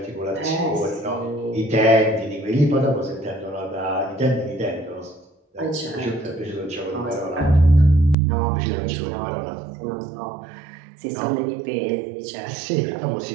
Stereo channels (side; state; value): left; drops out; at 8.2 s